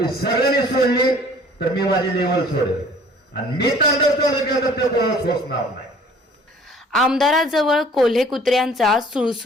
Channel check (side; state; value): both; normal; correlation 0.53